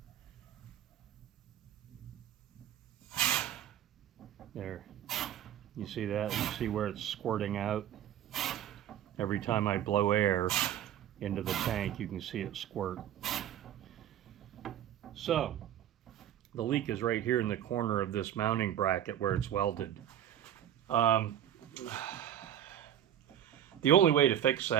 There. You see that? You see where it's squirting out? Every time I blow air into the tank, you can see it squirt. So, the leak is right here in the corner of this mounting bracket where it's welded. The only way to fix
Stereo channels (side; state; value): left; quieter; 10.8 dB